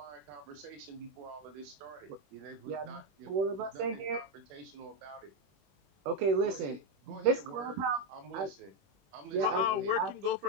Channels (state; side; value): late; left; 21 ms